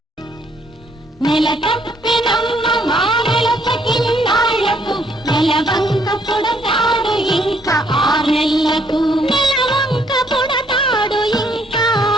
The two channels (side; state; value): both; normal; correlation 0.68